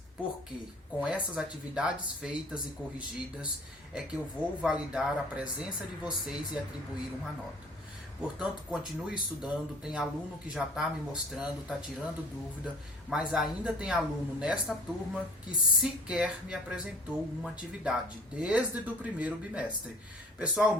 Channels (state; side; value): normal; both; correlation 0.48